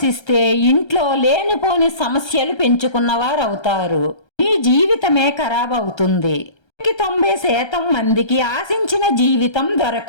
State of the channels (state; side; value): late; right; 1.3 ms